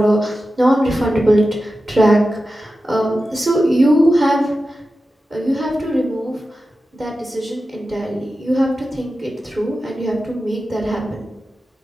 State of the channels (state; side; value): normal; both; correlation 0.93